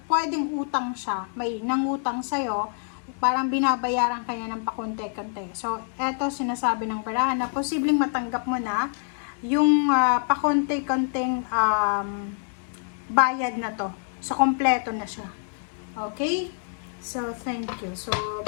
pwedeng utang siya, may nangutang sa'yo, parang binabayaran kanya ng pakonte-konte. So, eto sinasabi ng barahan na posibleng matanggap mo na yung pakonte-konteng bayad na to. So, kompleto na siya. Okay? So, thank you. So,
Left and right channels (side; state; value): right; silent; 61 dB below the other